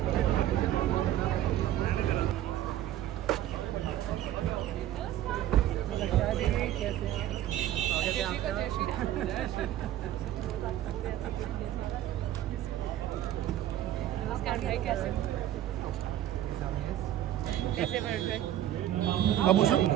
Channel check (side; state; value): left; quieter; 12.6 dB